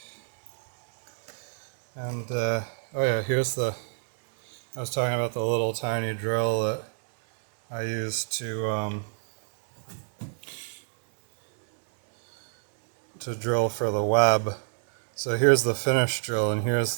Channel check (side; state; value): left; silent; digital silence